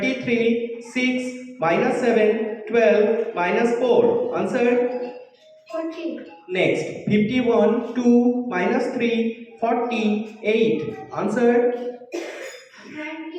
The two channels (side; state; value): both; identical; correlation 1.00